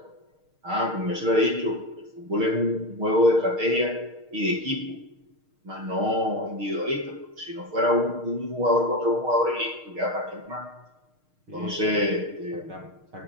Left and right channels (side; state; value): left; late; 6.5 ms